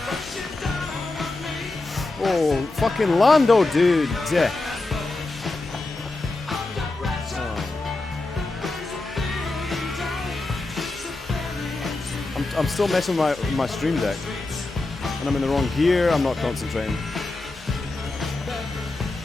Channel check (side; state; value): right; quieter; 3.2 dB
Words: Oh, fucking Lando, dude. I'm still messing with my stream deck. And I'm in the wrong gear, I'm not concentrating.